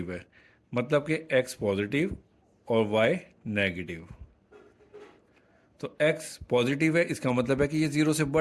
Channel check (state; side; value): identical; both; correlation 1.00